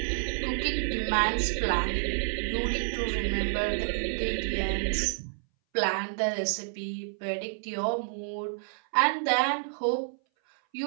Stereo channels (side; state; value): left; silent; 58 dB below the other